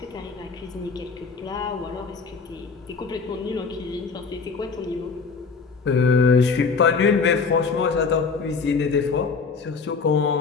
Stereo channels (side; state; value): right; quieter; 4.9 dB